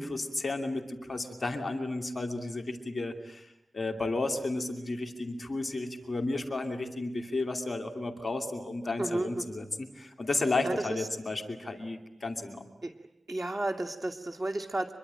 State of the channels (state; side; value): normal; both; correlation 0.93